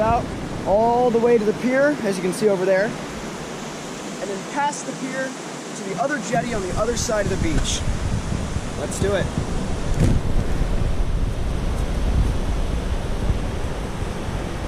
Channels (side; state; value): both; identical; correlation 1.00